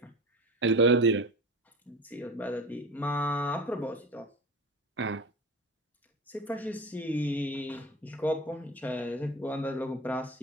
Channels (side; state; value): both; normal; correlation 0.32